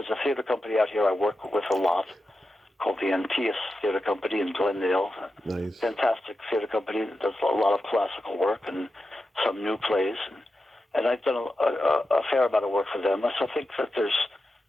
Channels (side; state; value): both; normal; correlation 0.90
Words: a theater company out here I work with a lot called the Antaeus Theater Company in Glendale. Nice. Fantastic theater company that does a lot of classical work and some new plays. And I've done a fair amount of work for them. So I think that there's